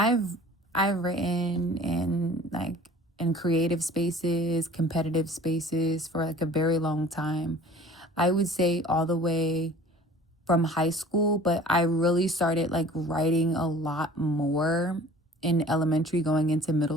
written in creative spaces, competitive spaces for like a very long time. I would say all the way from high school, but I really started like writing a lot more in elementary going into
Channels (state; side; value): normal; both; correlation 0.47